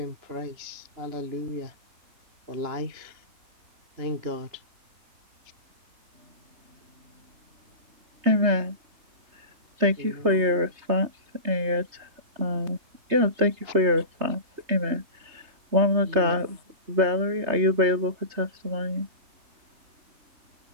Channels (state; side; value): late; left; 3.3 ms